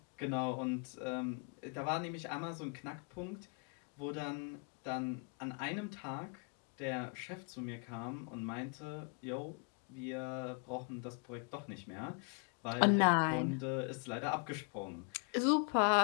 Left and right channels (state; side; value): quieter; right; 39.7 dB